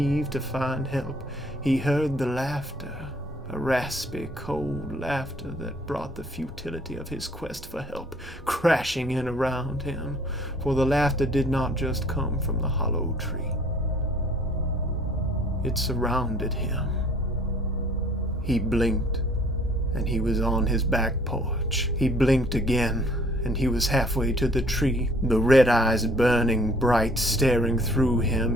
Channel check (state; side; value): normal; both; correlation 0.57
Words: to find help, he heard the laughter, a raspy, cold laughter that brought the futility of his quest for help crashing in around him, for the laughter did not just come from the hollow tree. It surrounded him. He blinked, and he was on his back porch. He blinked again, and he was halfway to the tree, the red eyes burning bright, staring through him.